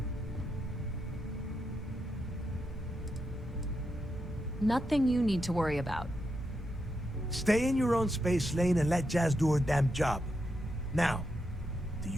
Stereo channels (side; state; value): both; normal; correlation 0.84